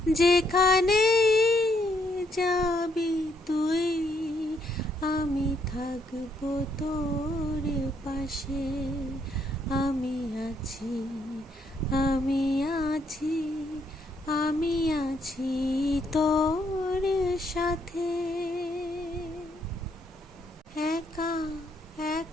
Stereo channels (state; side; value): normal; both; correlation 0.73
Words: যেখানে যাবি তুই, আমি থাকবো তোর পাশে। আমি আছি, আমি আছি, আমি আছি তোর সাথে। একা